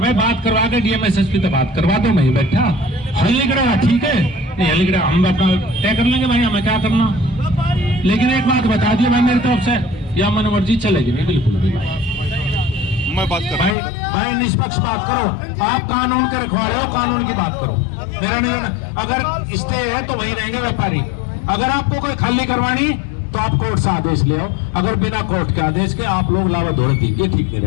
बात करवा के डीएम एसएसपी तो बात करवा दो, मैं ही बैठा हल्लीगड़ा ठीक है, नहीं हल्लीगड़ा हम अपना तय कर लेंगे भाई, हमें क्या करना। लेकिन एक बात बता दिए भाई मेरी तरफ से, या मन मर्जी चलेगी नहीं बिल्कुल भी भाई। मैं बात कर भाई निष्पक्ष बात करो, आप कानून के रखवाले हो, कानून की बात करो, मेरा नहीं। अगर स्टे है तो वही रहेंगे व्यापारी। अगर आपको कोई खाली करवानी तो आप कोर्ट से आदेश ले आओ, अगर बिना कोर्ट के आदेश के आप लोग लावा दौड़ दी, ये ठीक नहीं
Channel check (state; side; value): drops out; right; at 13.8 s